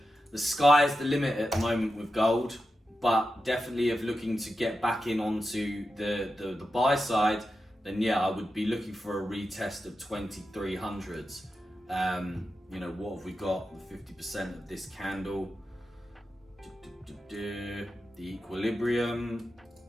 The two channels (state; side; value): normal; both; correlation 0.90